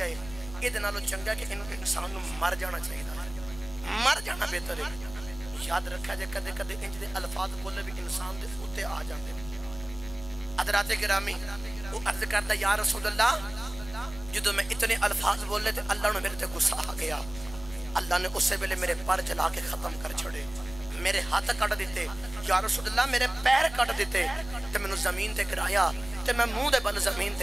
ہے یہ دنالو چنگا کہ انسان نو مر جانا چاہیے مر جانا بہتر ہے یاد رکھا جائے کدے کدے انج دے الفاظ بولے بھی انسان دے ہوتے آ جاندے حضرات گرامی وہ عرض کرتا یا رسول اللہ جدو میں اتنے الفاظ بولے تھے اللہ نے میرے تے غصہ آ گیا اللہ نے اسے ویلے میرے پر جلا کے ختم کر چھڑے میرے ہاتھ کٹ دیتے یا رسول اللہ میرے پیر کٹ دیتے تے میں نے زمین تے گرایا تے میں منہ دے بل زمین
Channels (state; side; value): noise; left; rumble, 16 dB below the sound